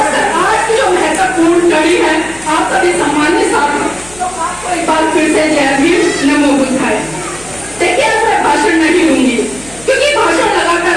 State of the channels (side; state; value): left; noise; hum, 21 dB below the sound